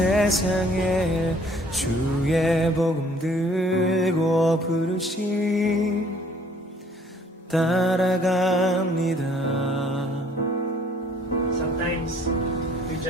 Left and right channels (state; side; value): normal; both; correlation 0.59